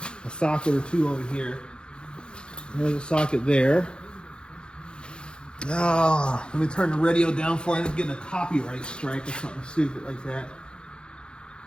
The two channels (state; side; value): late; right; 0.051 ms